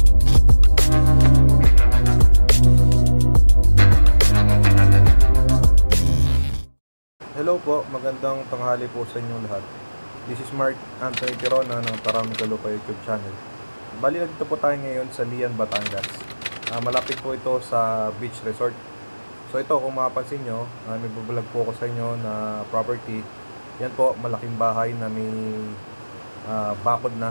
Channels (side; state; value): both; inverted; correlation -1.00